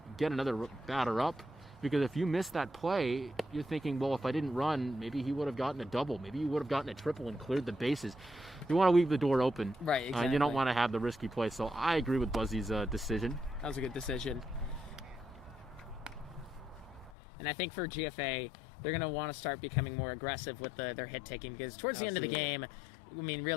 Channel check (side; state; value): right; drops out; at 17.1 s